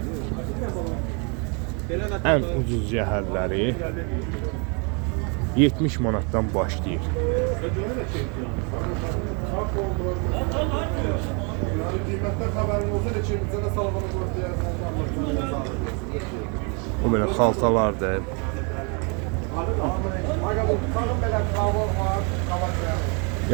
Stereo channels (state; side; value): quieter; left; 34.6 dB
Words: Ən ucuz yəhərləri 70 manatdan başlayır. O belə xaltalardır.